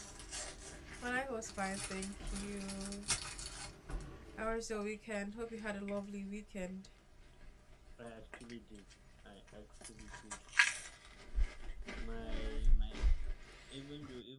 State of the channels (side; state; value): both; identical; correlation 1.00